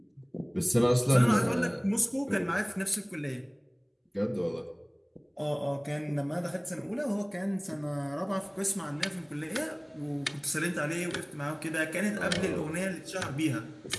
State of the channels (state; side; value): identical; both; correlation 1.00